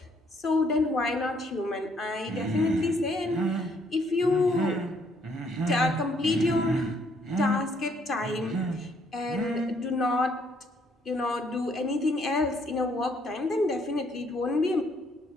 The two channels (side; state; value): both; normal; correlation 0.67